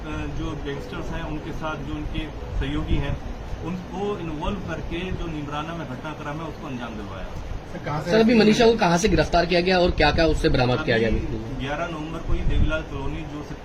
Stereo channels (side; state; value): both; identical; correlation 1.00